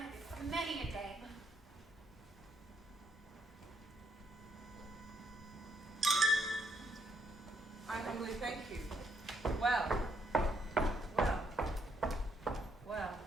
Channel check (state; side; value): normal; both; correlation 0.74